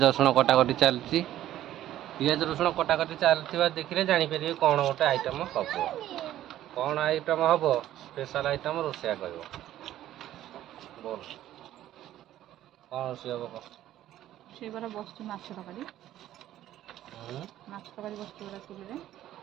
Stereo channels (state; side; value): quieter; left; 13.0 dB